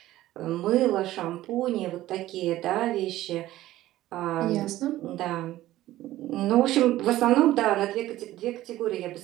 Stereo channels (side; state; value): left; quieter; 15.2 dB